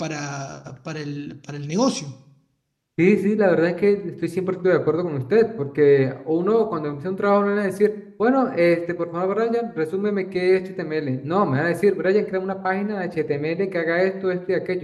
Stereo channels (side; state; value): both; identical; correlation 1.00